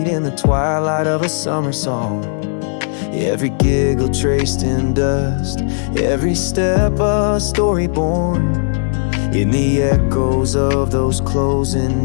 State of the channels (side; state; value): right; silent; 68 dB below the other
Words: in the twilight of a summer song. Every giggle traced in dust, every step a story born. In the echoes of those closing